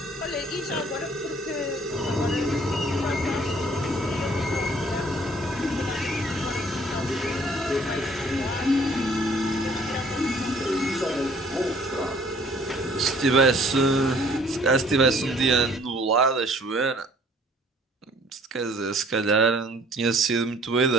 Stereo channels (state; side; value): normal; both; correlation 0.57